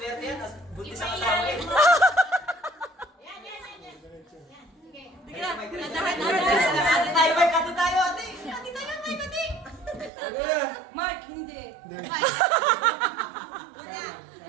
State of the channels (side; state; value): left; drops out; at 10.1 s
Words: yan. Buntis ang asawa eh. Sige lang. Dandan. Ate tayo, Mike. Ate tayo, ate. Ate tayo, Mike, ate. Mark, hindi.